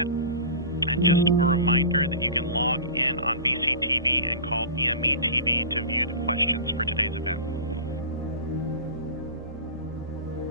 And just a reminder that you can log in on VCTV and call BME TV to view the questions for today's event.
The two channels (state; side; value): inverted; both; correlation -0.33